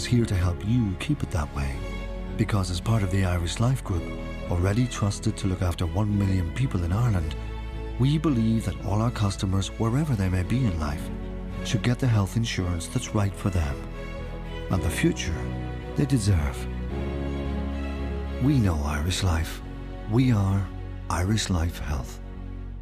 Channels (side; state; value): both; identical; correlation 1.00